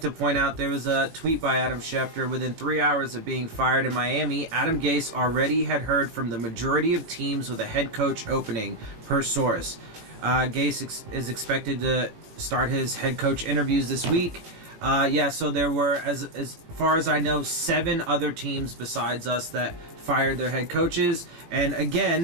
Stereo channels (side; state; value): left; late; 18 ms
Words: to point out there was a tweet by Adam Schefter. Within 3 hours of being fired in Miami, Adam Gase already had heard from the majority of teams with a head coach opening, per source. Gase is expected to start his head coach interviews this week. So there were, as far as I know, 7 other teams besides us that fired their head coaches. And